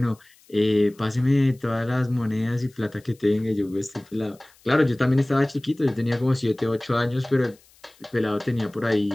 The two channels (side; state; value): left; noise; hiss, 29 dB below the sound